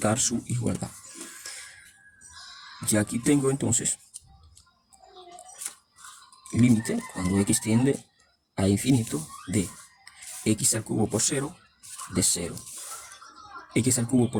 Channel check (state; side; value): identical; both; correlation 1.00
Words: su igualdad. Y aquí tengo entonces límite cuando x tiende a infinito de x al cubo por 0 de 0. X al cubo